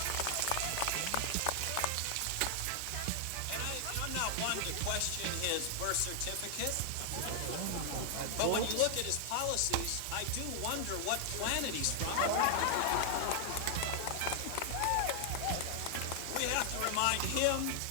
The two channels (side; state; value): both; different; correlation 0.00